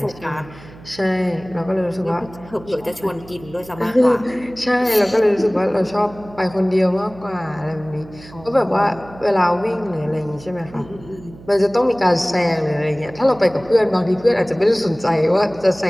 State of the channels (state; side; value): noise; right; hum, 20 dB below the sound